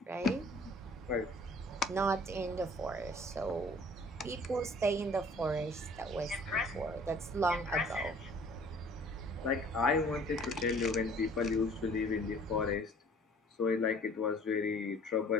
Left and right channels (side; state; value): both; normal; correlation 0.53